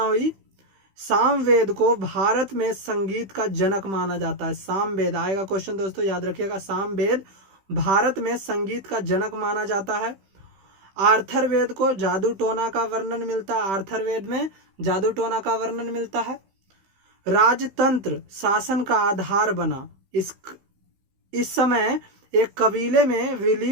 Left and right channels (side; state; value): left; late; 15 ms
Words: हुई। सामवेद को भारत में संगीत का जनक माना जाता है। सामवेद आएगा क्वेश्चन दोस्तों, याद रखिएगा। सामवेद भारत में संगीत का जनक माना जाता है। आर्थरवेद को जादू टोना का वर्णन मिलता है। आर्थरवेद में जादू टोना का वर्णन मिलता है। राजतंत्र शासन का आधार बना। इस समय एक कबीले में